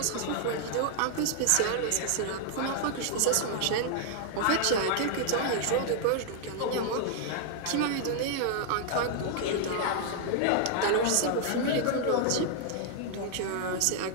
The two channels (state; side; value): different; both; correlation 0.00